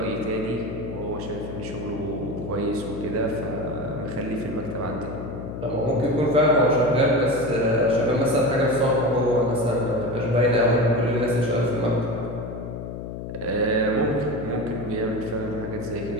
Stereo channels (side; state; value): left; noise; hum, 8 dB below the sound